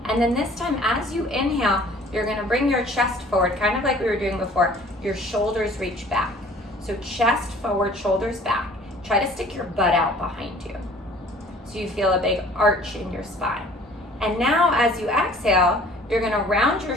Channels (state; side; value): normal; both; correlation 0.51